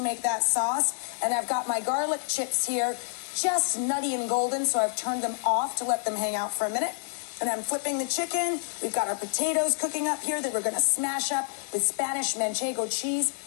make that sauce, and I've got my garlic chips here, just nutty and golden, so I've turned them off to let them hang out for a minute. And I'm flipping the chicken. We've got our potatoes cooking up here that we're going to smash up with Spanish manchego cheese,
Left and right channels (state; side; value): silent; right; digital silence